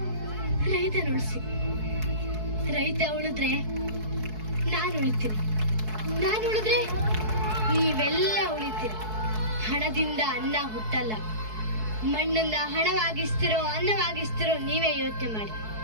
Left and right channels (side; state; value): left; late; 4.6 ms